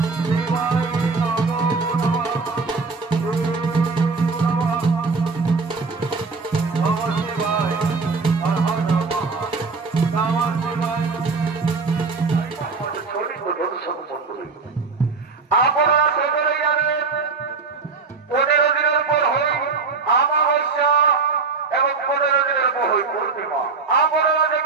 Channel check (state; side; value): quieter; left; 4.5 dB